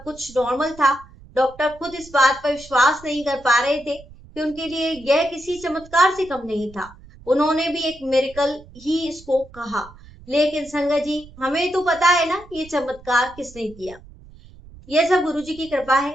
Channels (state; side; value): noise; right; rumble, 21 dB below the sound